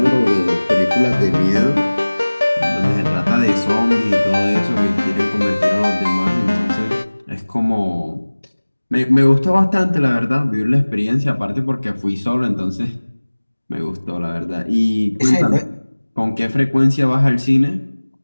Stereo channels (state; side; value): inverted; both; correlation -1.00